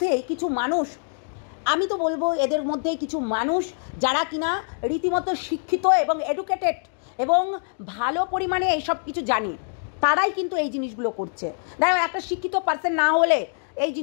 কিছু মানুষ, আমি তো বলবো এদের মধ্যে কিছু মানুষ যারা কিনা রীতিমতো শিক্ষিত এবং এডুকেটেড এবং ভালো পরিমাণে এইসব কিছু জানে, তারাই কিন্তু এই জিনিসগুলো করছে। দেখো একটা শিক্ষিত পার্সন না হলে এই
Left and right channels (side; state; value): right; silent; digital silence